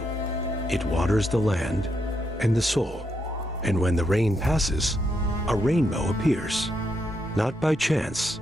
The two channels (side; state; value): both; normal; correlation 0.79